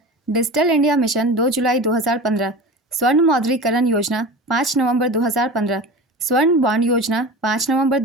डिजिटल इंडिया मिशन 2 जुलाई 2015। स्वर्ण मौद्रीकरण योजना 5 नवंबर 2015। स्वर्ण बॉन्ड योजना 5 नवंबर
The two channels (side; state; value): both; normal; correlation 0.32